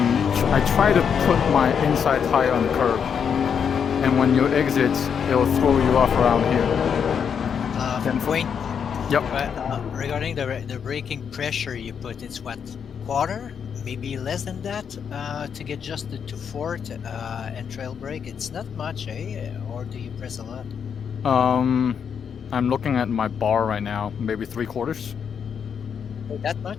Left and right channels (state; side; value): quieter; right; 7.2 dB